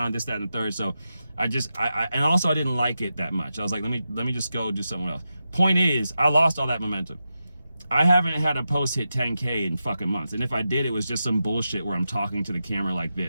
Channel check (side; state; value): both; inverted; correlation -0.89